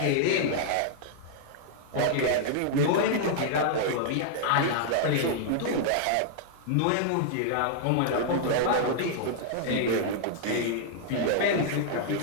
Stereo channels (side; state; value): both; different; correlation -0.01